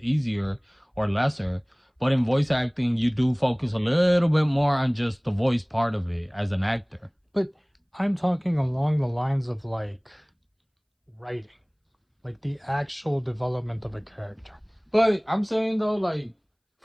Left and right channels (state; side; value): identical; both; correlation 1.00